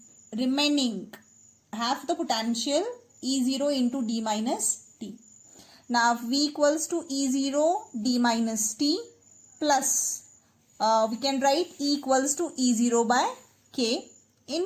remaining half the potential E0 into D minus T. Now V equals to E0 D minus T plus we can write E equals to E0 by K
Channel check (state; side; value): identical; both; correlation 1.00